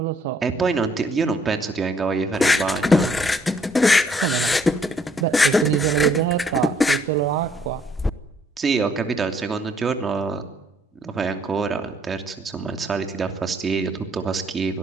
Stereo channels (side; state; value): both; normal; correlation 0.66